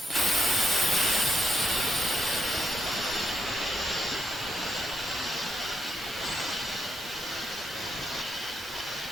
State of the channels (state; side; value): normal; both; correlation 0.78